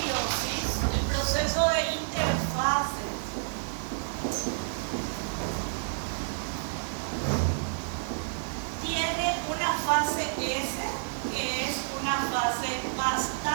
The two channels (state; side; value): silent; left; digital silence